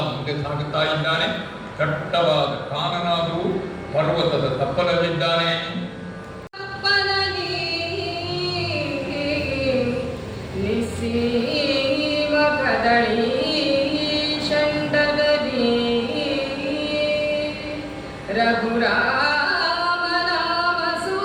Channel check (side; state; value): both; identical; correlation 1.00